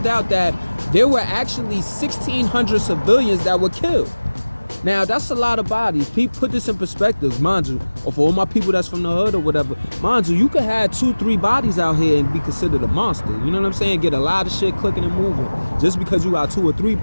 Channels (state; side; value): inverted; both; correlation -1.00